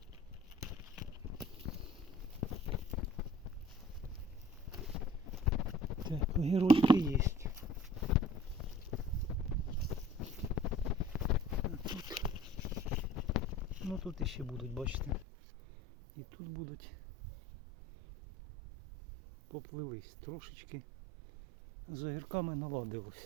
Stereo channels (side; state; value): left; drops out; at 15.2 s